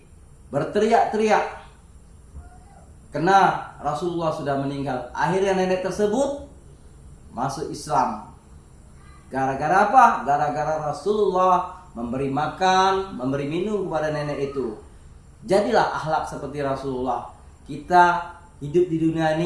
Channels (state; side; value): identical; both; correlation 1.00